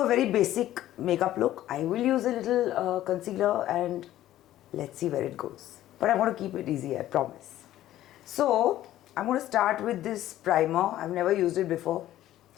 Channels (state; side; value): quieter; right; 13.6 dB